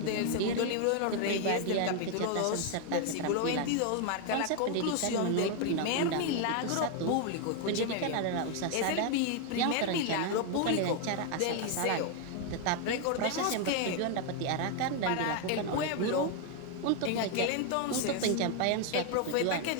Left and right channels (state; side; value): different; both; correlation 0.01